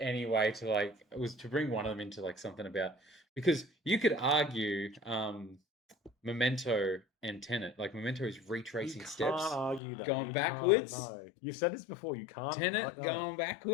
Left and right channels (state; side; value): drops out; right; at 9.8 s